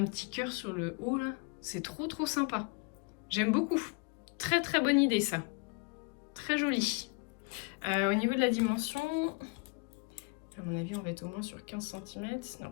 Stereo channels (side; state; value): right; quieter; 31.7 dB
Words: petit cœur sur le haut, là. C'est trop sympa. J'aime beaucoup. Très bonne idée, ça. Très joli. Au niveau de la dimension, à mon avis, on va être au moins sur 15 cm. Non,